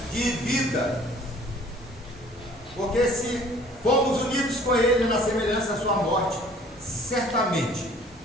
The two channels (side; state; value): both; normal; correlation 0.53